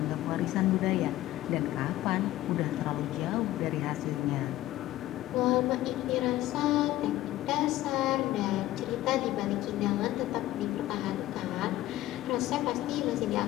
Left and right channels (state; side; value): quieter; right; 15.2 dB